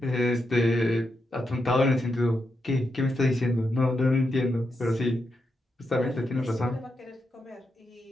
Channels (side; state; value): both; normal; correlation 0.84